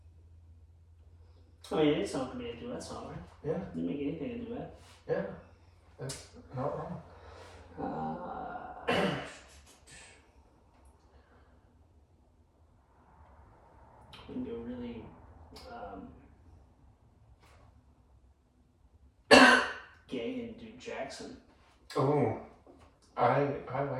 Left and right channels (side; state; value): both; identical; correlation 1.00